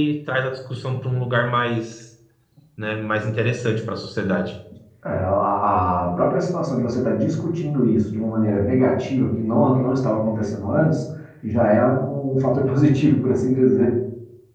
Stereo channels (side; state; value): both; identical; correlation 1.00